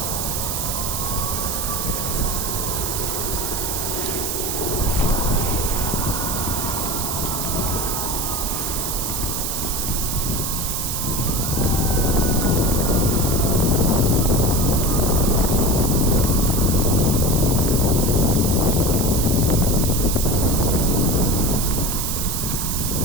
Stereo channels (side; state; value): right; noise; hiss, 2 dB below the sound